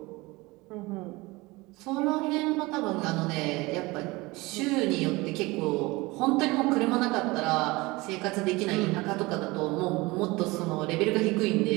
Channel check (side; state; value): left; quieter; 22.5 dB